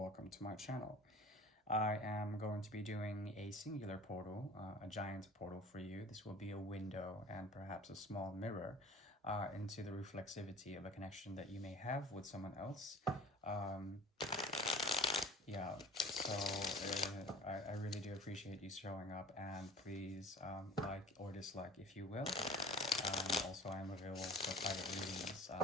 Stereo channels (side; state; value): both; normal; correlation 0.44